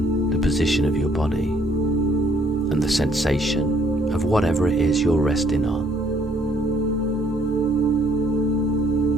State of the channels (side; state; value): both; normal; correlation 0.64